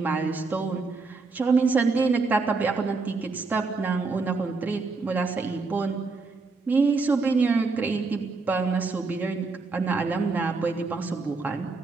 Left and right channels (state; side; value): quieter; left; 4.1 dB